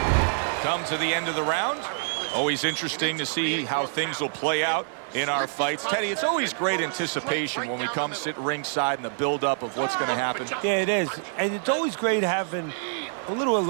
Come to the end of the round. Always interesting to see how things will play out in our fights. Teddy, it's always great anticipation when we come sit ringside and the build-up of what's going to happen. Yeah, it is. And it's always great having a little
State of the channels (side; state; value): left; silent; digital silence